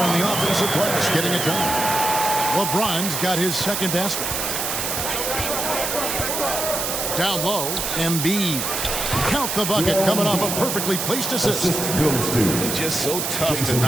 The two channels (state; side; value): noise; right; hiss, 2 dB below the sound